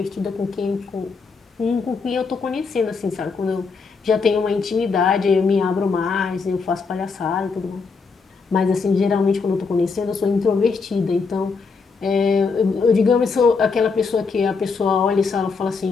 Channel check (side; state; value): right; quieter; 4.8 dB